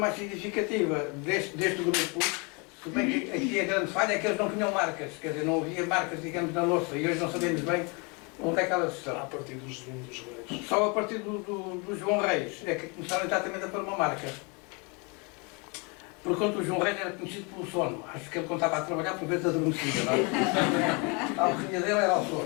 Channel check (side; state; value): right; quieter; 31.3 dB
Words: significativa deste grupo, se bem que aqui a grande falha é que eles não tinham marcas, quer dizer, não havia marcas, digamos, na louça, e hoje não sabemos bem onde é que elas estão. A partir dos Reis. Só a partir do João Reis é que começaram exatamente a pôr uma marca. Por conta o João Reis era conhecido pelo sono. Acho que ele contava a trabalhar por vezes adormecido, não é? A alcunha dele era o